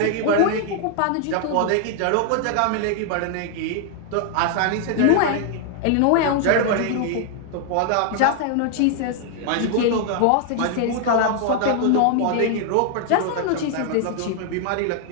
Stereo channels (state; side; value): different; both; correlation 0.00